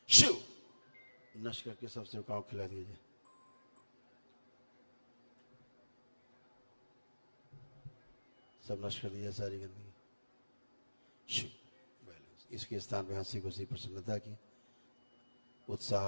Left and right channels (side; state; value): both; inverted; correlation -1.00